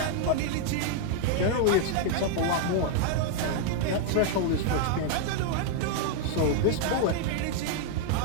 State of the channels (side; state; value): both; different; correlation 0.00